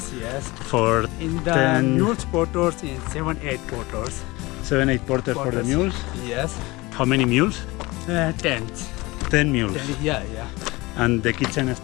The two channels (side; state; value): right; quieter; 22.1 dB